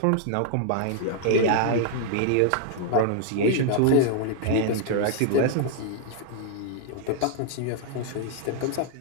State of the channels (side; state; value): both; different; correlation -0.01